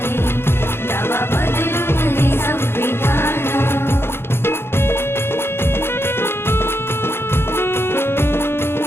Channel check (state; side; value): late; right; 0.11 ms